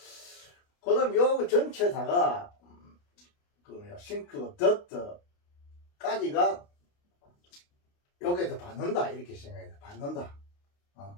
그 다음 요 전체다가, 싱크, 더트까지가 여기에서 받는다. 이렇게 생각해야 돼. 받는다.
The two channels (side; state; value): right; late; 29 ms